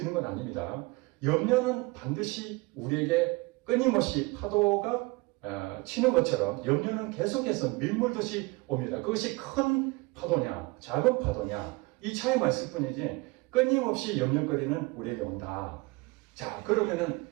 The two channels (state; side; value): quieter; left; 24.4 dB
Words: 건 아닙니다. 염려는 반드시 우리에게 끊임없이 파도가 치는 것처럼 염려는 계속해서 밀물듯이 옵니다. 그것이 큰 파도냐 작은 파도냐 이 차이만 있을 뿐이지 끊임없이 염려거리는 우리에게 온다. 자, 그러면은